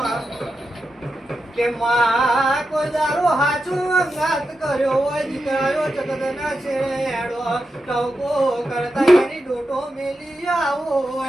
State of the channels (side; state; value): both; normal; correlation 0.89